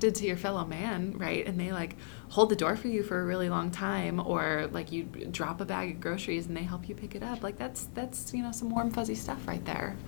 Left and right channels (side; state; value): right; silent; 55 dB below the other